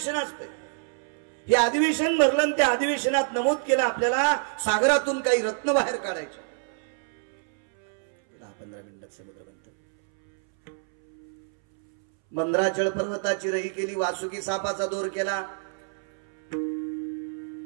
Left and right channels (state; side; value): silent; left; 60 dB below the other